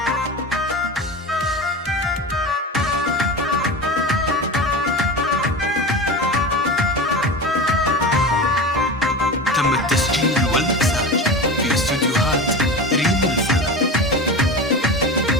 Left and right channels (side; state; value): both; normal; correlation 0.27